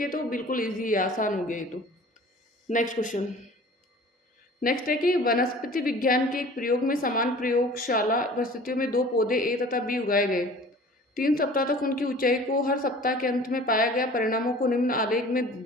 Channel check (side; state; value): both; normal; correlation 0.45